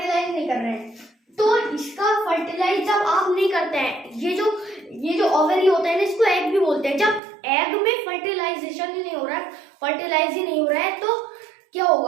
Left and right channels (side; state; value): left; drops out; at 7.2 s